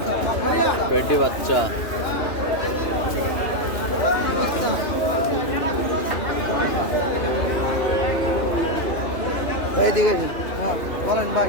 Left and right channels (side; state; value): right; late; 2.9 ms